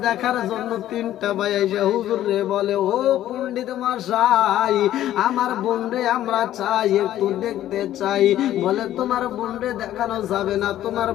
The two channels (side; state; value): right; quieter; 12.8 dB